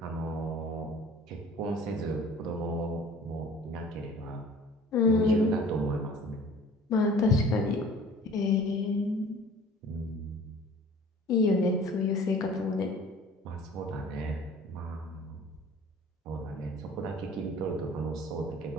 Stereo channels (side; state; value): both; normal; correlation 0.48